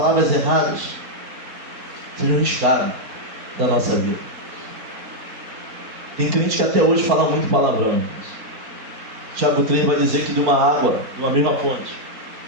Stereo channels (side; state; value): left; late; 4.4 ms